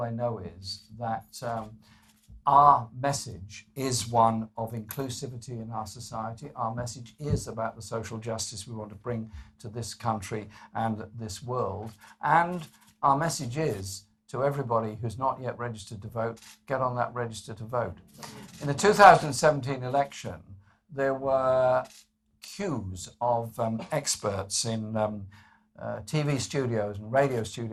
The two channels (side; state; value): both; identical; correlation 1.00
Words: I know is that our message is one of inclusivity in our society. Our message is about the social justice we want to bring to this country and this world. And our message is to everybody who's not yet registered to vote, get on that register to vote. In the 2017 election, there were queues of experts in TV studios and radio